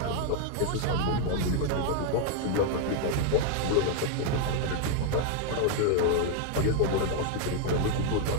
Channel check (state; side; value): different; both; correlation 0.00